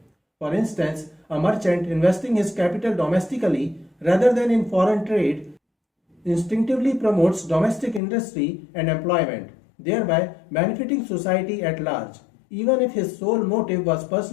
For instance, a merchant investing his capital domestically rather than in foreign trade instinctively promotes domestic industry and employment, thereby benefiting society at large, even if his sole motive was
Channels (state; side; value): drops out; right; at 8.0 s